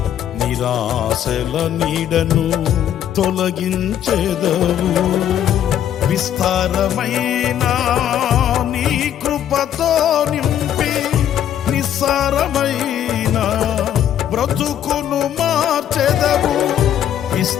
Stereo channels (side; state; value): right; quieter; 10.4 dB